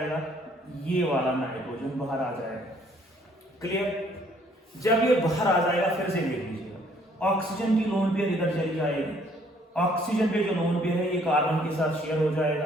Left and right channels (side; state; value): both; normal; correlation 0.63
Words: ये वाला नाइट्रोजन बाहर आ जाएगा। क्लियर? जब ये बाहर आ जाएगा, फिर से देख लीजिएगा, ऑक्सीजन की लोन पेयर इधर चली जाएगी, ऑक्सीजन पे जो लोन पेयर है ये कार्बन के साथ शेयर हो जाएगा,